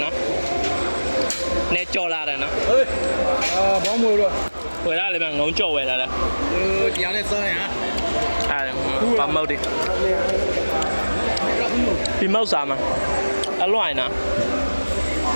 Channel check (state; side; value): inverted; both; correlation -1.00